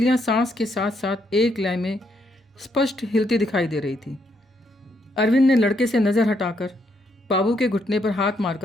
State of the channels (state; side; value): normal; both; correlation 0.75